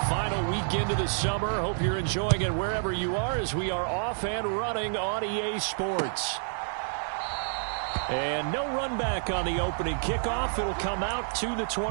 final weekend of the summer. Hope you're enjoying it wherever you are as we are off and running on EA Sports. And no run back on the opening kickoff. It'll come out to the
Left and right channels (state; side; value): silent; left; digital silence